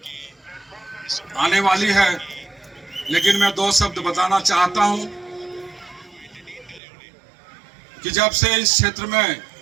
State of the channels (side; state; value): left; drops out; at 6.8 s